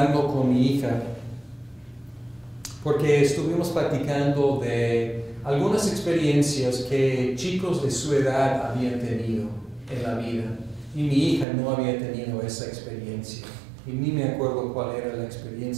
con mi hija, porque estuvimos platicando de algunas experiencias que chicos de su edad habían tenido en la vida, y mi hija no había tenido esa experiencia. Y ni me acuerdo cuál era la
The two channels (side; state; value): left; drops out; at 11.5 s